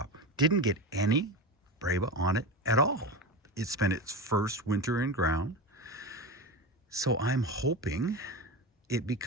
Didn't get any Breba on it at all. It spent its first winter in ground. So I'm hoping it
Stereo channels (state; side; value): normal; both; correlation 0.23